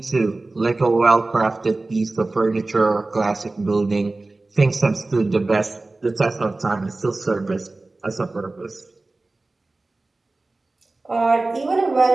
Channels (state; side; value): quieter; left; 3.2 dB